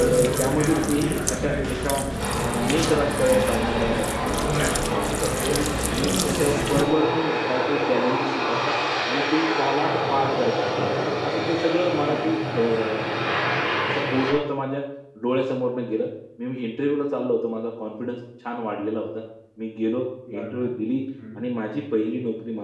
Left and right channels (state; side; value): identical; both; correlation 1.00